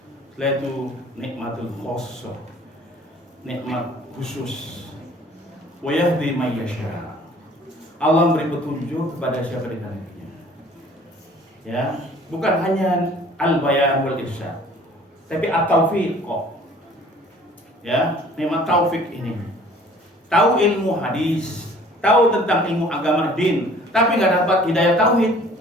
Setelah itu nikmatul khossah, nikmat khusus. Wa yahdi may yasha. Allah memberi petunjuk kepada siapa dikehendakinya. Ya, bukan hanya al-bayan wal irsyad, tapi at-taufiq. Ya, nikmat taufik ini. Tahu ilmu hadis, tahu tentang ilmu agama din, tapi nggak dapat hidayah tauhid,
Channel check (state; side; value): normal; both; correlation 0.52